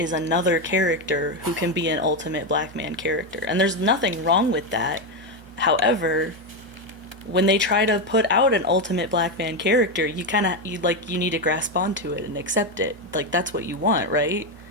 another character who can be an ultimate black man character. And there's nothing wrong with that. However, when they try to put out an ultimate black man character, you need to grasp onto it and accept it. Like, that's what you want, right?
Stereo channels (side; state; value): both; normal; correlation 0.09